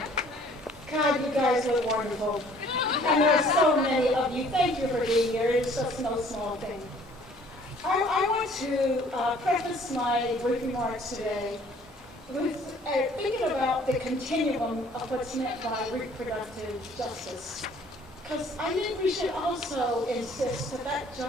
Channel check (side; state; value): both; normal; correlation 0.56